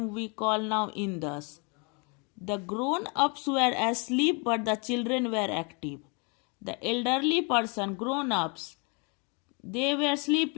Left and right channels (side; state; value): right; quieter; 33.5 dB